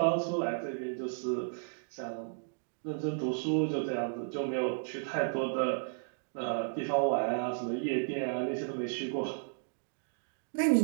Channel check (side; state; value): left; silent; digital silence